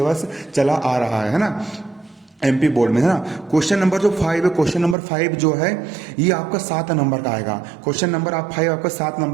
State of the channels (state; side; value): drops out; left; at 5.0 s